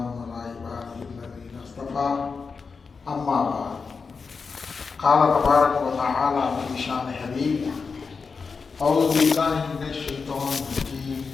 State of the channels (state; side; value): quieter; right; 5.0 dB